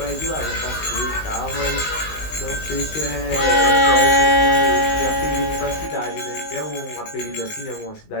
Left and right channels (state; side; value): late; right; 19 ms